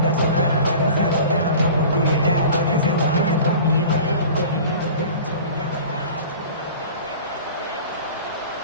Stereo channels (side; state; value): both; inverted; correlation -0.40